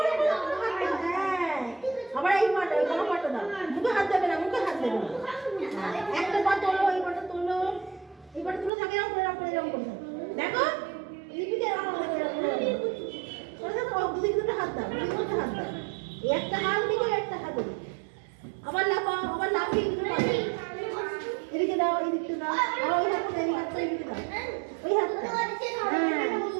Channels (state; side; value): drops out; left; at 8.7 s